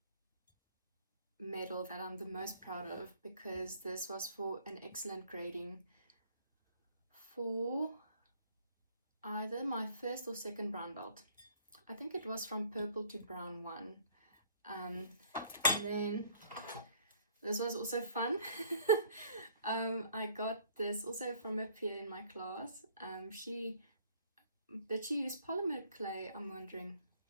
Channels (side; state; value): both; inverted; correlation -0.58